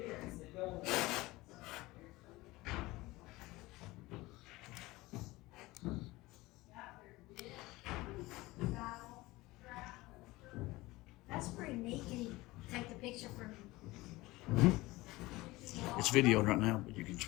That's pretty neat. Can you take the picture from? It's videoed right now, but you can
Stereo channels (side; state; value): right; quieter; 20.1 dB